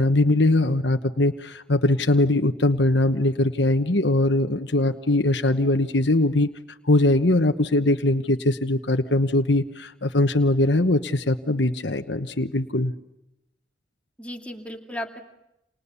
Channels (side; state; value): both; normal; correlation 0.52